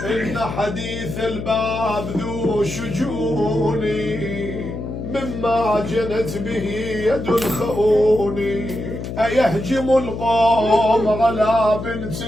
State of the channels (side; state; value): left; noise; hum, 7 dB below the sound